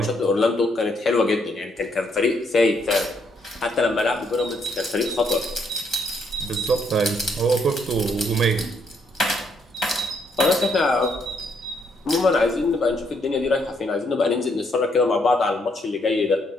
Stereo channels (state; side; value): normal; both; correlation 0.73